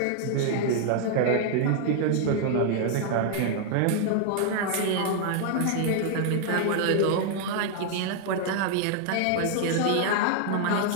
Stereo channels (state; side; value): different; both; correlation 0.00